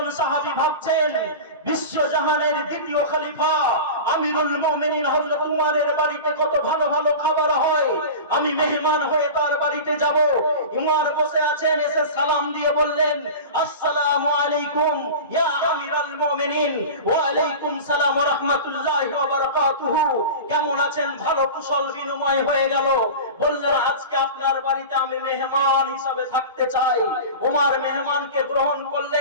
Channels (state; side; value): inverted; both; correlation -0.31